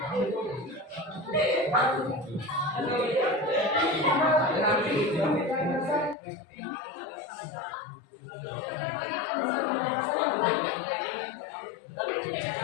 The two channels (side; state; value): right; drops out; at 6.2 s